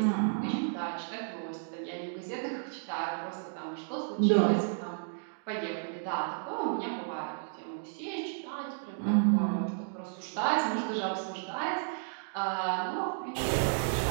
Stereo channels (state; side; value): silent; left; digital silence